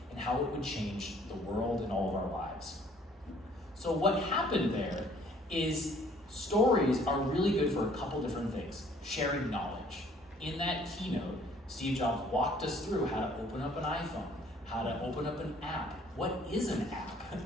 and how it would change the world and all of our lives. So what happened there is stories are really good for a couple different things. Sharing knowledge. In that keynote, Steve Jobs walked us through how to open up an iPhone, how to open up an app. What is an app?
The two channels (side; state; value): both; normal; correlation 0.58